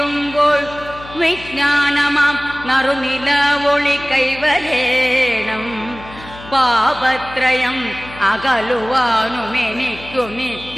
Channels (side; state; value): left; noise; hum, 17 dB below the sound